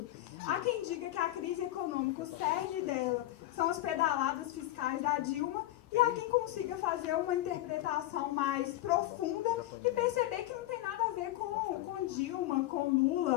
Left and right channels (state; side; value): quieter; right; 15.5 dB